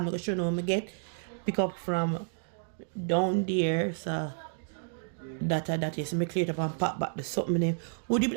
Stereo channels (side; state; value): left; silent; digital silence